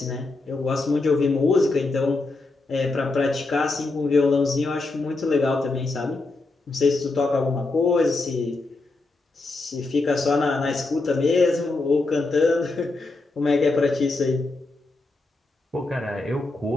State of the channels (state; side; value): quieter; right; 3.3 dB